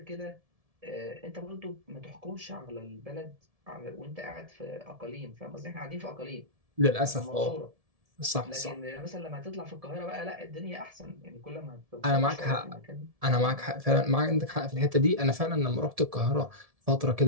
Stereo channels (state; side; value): late; left; 1.7 ms